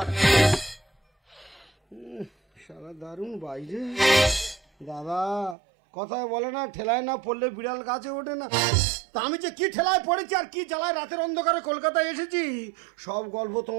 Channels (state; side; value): drops out; left; at 5.6 s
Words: সারা দারুণ বাইরে দাদা, কথায় বলে না, ঠেলায় না পড়লে বিড়াল গাছে ওঠে না। তা আমি যে কি ঠেলায় পড়েছি আর কি জ্বালায় রাতের অন্ধকারে কলকাতায় এসেছি, সব গল্প